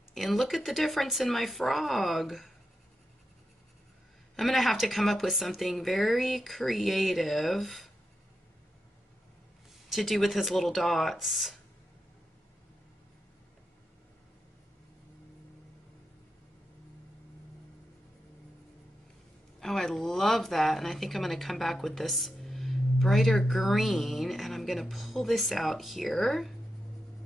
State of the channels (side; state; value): both; normal; correlation 0.88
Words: And look at the difference in my frog. I'm going to have to come up with something very creative to do with his little dots. Oh, I love that. And I think I'm going to come back with this brighter green, and I'm going to pull this out here.